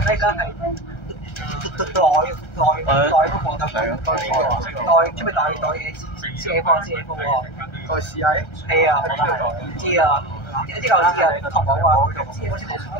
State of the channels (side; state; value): right; late; 1.3 ms